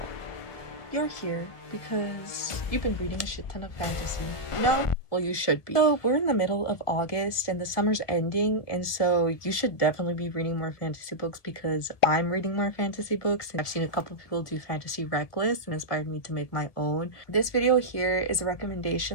You're here because you've been reading a shit ton of fantasy. No? Well, you should be. So, we're in the middle of August and the summer's ending, and so you should definitely be reading more fantasy books because I'm reading more fantasy books, and I've seen a couple of people do fantasy rec lists and inspired me to make my own. This video here is a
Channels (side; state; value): right; late; 1.6 ms